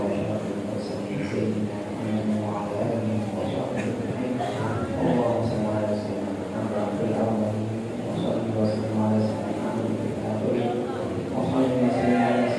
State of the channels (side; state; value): both; identical; correlation 1.00